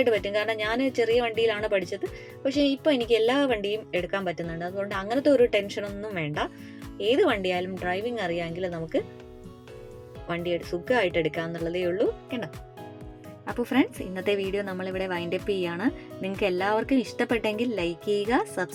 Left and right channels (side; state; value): both; identical; correlation 1.00